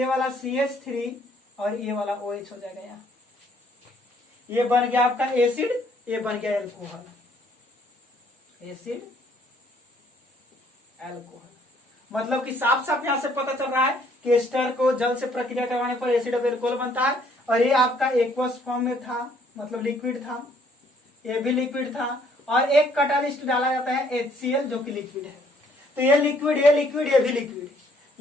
वाला CH3 और ये वाला OH हो जाएगा यहाँ, ये बन गया आपका एसिड, ये बन गया एल्कोहल, एसिड एल्कोहल। मतलब कि साफ साफ यहां से पता चल रहा है कि एस्टर को जल से प्रक्रिया करवाने पर एसिड ऑफ एल्कोहल बनता है, और ये आपका एक्वस फॉर्म में था, मतलब लिक्विड था, ये भी लिक्विड था, और एक कैटालिस्ट डाला जाता है HCl जो कि लिक्विड है। तो ये लिक्विड ये लिक्विड ये भी लिक्विड,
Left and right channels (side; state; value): both; normal; correlation 0.64